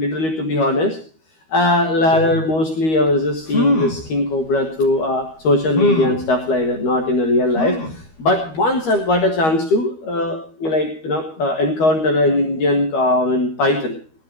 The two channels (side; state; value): right; late; 13 ms